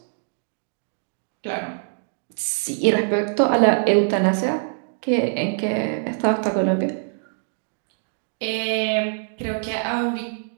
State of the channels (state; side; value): silent; left; digital silence